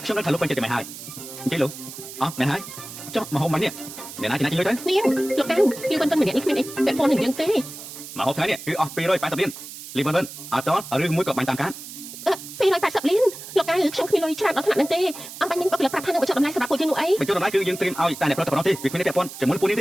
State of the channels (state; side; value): noise; right; hiss, 12 dB below the sound